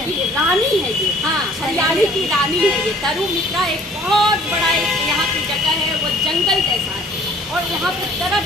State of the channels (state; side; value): normal; both; correlation 0.54